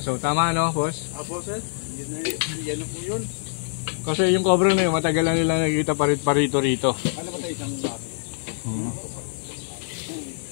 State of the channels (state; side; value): silent; right; 55 dB below the other